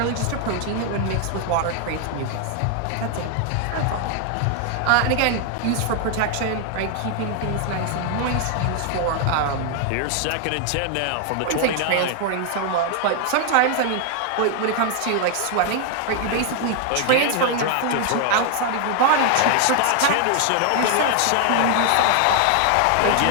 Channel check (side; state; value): both; different; correlation 0.00